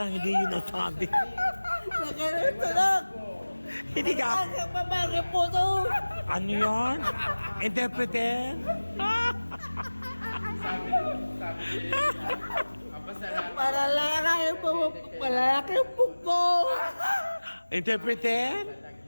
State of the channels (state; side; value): inverted; both; correlation -1.00